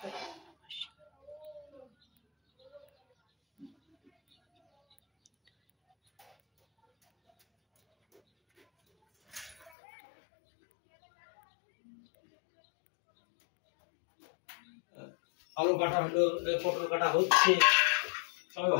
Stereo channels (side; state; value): right; drops out; at 9.7 s